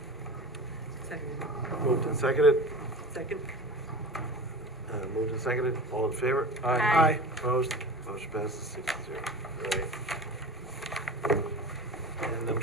Second. Moved and seconded, Second. moved and seconded, all in favor? Aye. Opposed? Motion passes 6-0. All right. And I'm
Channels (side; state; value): both; normal; correlation 0.34